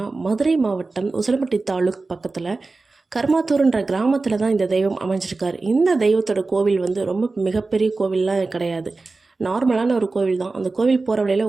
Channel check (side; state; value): left; quieter; 3.7 dB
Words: மதுரை மாவட்டம் உசிலம்பட்டி தாலுக் பக்கத்தில் கருமாத்தூர்ன்ற கிராமத்தில் தான் இந்த தெய்வம் அமைஞ்சிருக்காரு. இந்த தெய்வத்தோட கோவில் வந்து ரொம்ப மிகப்பெரிய கோவில்லாம் கிடையாது, நார்மலான ஒரு கோவில் தான். அந்த கோவில் போகிற வழியில்